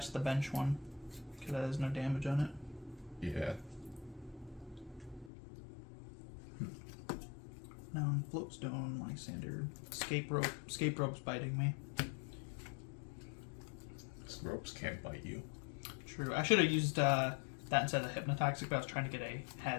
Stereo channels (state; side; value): drops out; right; at 5.3 s